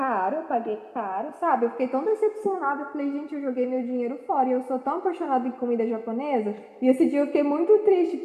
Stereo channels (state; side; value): identical; both; correlation 1.00